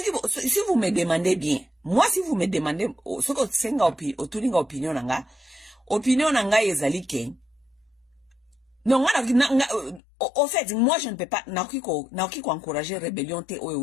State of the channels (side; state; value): right; drops out; at 10.0 s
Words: vous me demandez bien, moi si vous me demandez ce que senga opinion nanga ezali ke. Non, au fait, moi je ne peux pas naoki ko encourager rébellion te